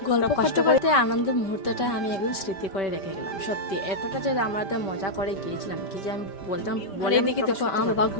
গল্প কষ্ট করতে আনন্দের মুহূর্তটা আমি একদম স্মৃতি করে রেখে গেলাম। সত্যি এতটা যে আমরা তো মজা করে গিয়েছিলাম, কি যে আমি বলতাম বলে। এদিকে দেখো আমার বাবা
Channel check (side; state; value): right; late; 5.2 ms